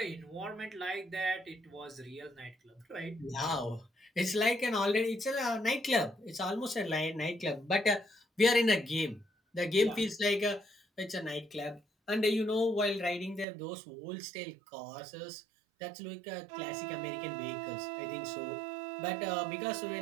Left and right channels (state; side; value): drops out; left; at 13.5 s